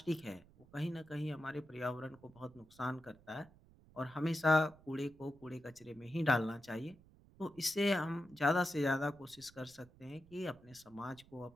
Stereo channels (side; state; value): right; noise; rumble, 25 dB below the sound